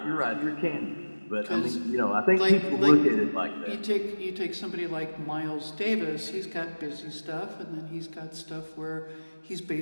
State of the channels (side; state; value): both; inverted; correlation -1.00